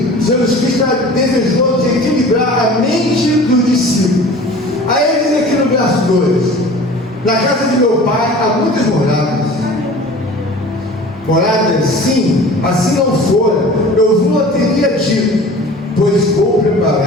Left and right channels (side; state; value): both; normal; correlation 0.42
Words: Jesus Cristo está desejoso de equilibrar a mente dos discípulos. Aí ele diz aqui no verso 2: na casa de meu pai há muitas moradas. Moradas, sim, assim não fora, eu vos não teria dito, pois vou